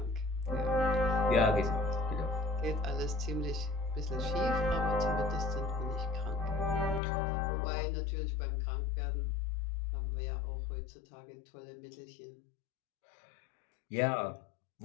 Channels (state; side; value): drops out; right; at 7.0 s